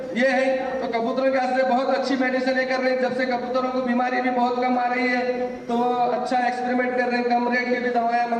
ये है। तो कबूतरों के वास्ते बहुत अच्छी मेडिसिन कर रहे हैं, जब से कबूतरों को बीमारी भी बहुत कम आ रही है तो अच्छा एक्सपेरिमेंट कर रहे हैं, कम रेट की भी दवाएं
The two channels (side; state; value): both; identical; correlation 1.00